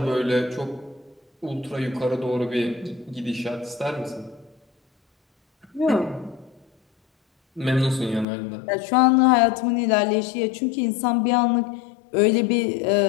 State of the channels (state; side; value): drops out; right; at 8.2 s